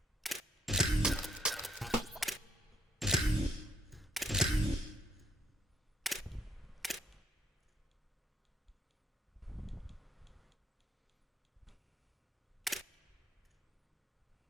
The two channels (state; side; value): normal; both; correlation 0.72